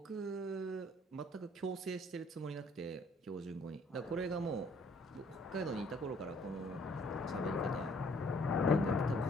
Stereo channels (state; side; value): normal; both; correlation 0.61